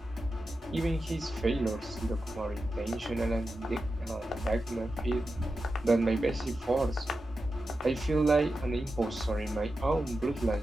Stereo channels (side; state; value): both; normal; correlation 0.91